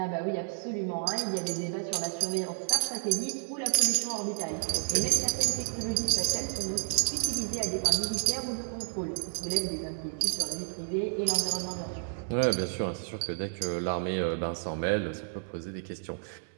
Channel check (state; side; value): silent; left; 57 dB below the other